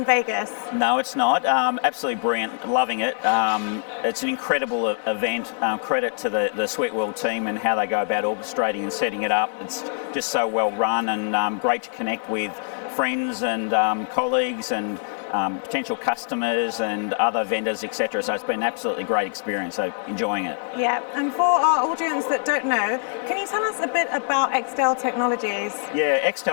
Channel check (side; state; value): right; silent; digital silence